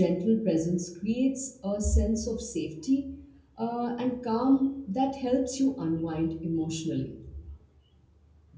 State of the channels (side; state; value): both; identical; correlation 1.00